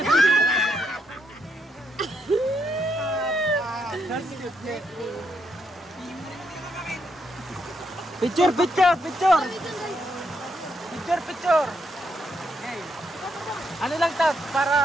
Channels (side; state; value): both; normal; correlation 0.78